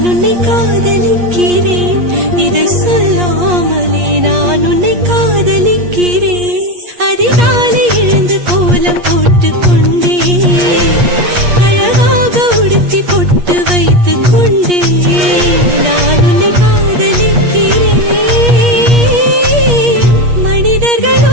உன்னை காதலிக்கிறேன் இதை சொல்லாமலே நான் உன்னை காதலிக்கிறேன் அதிகாலை எழுந்து கோலம் போட்டுக் கொண்டே அழகாக உடுத்தி பொட்டு வைத்துக் கொண்டே நான் உன்னை காதலிக்கிறேன் மனிதர்கள்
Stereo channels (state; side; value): late; left; 8.4 ms